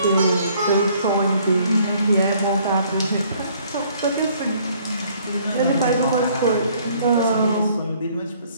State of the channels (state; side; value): inverted; both; correlation -0.61